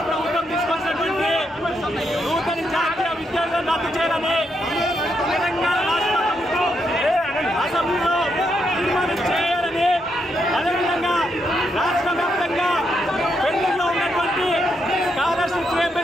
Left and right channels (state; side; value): normal; both; correlation 0.79